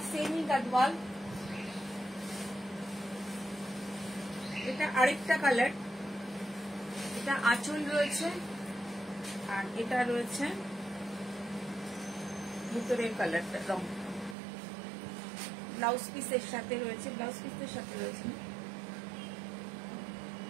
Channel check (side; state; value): left; drops out; at 14.4 s